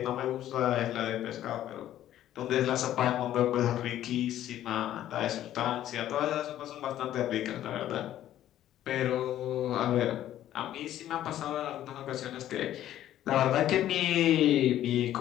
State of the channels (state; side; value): quieter; right; 12.4 dB